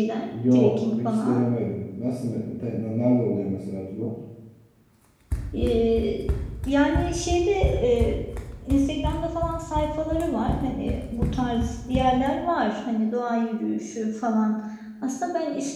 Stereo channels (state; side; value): identical; both; correlation 1.00